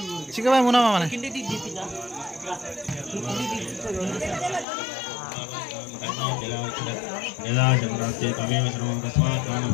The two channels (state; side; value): drops out; right; at 4.7 s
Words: చికబాయ్ మునామా మన